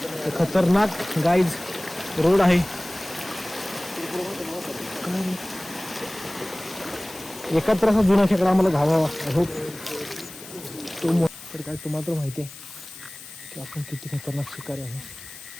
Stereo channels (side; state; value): left; noise; hiss, 15 dB below the sound